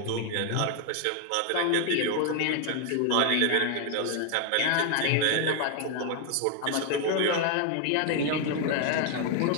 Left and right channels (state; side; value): different; both; correlation 0.00